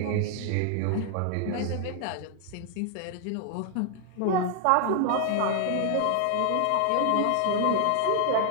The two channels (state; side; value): different; both; correlation 0.00